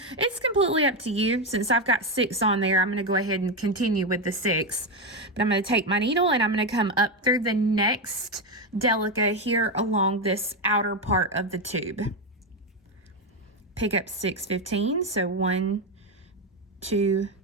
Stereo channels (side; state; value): both; normal; correlation 0.10